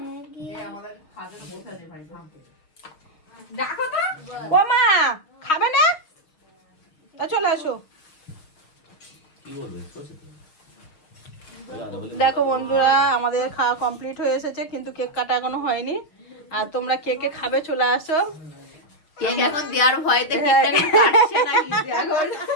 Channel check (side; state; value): right; late; 6.5 ms